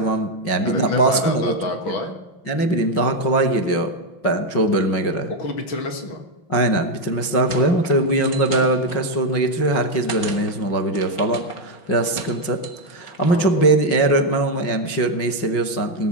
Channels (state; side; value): late; right; 5.6 ms